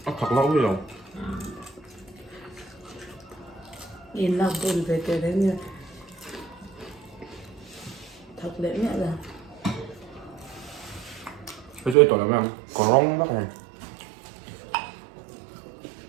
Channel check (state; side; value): drops out; left; at 12.0 s